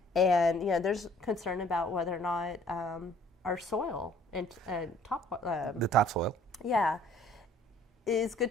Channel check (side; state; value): both; normal; correlation 0.56